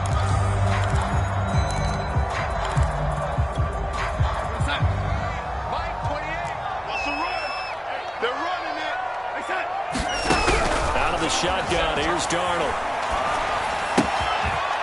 Shotgun, here's Darnold.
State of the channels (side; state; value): both; identical; correlation 1.00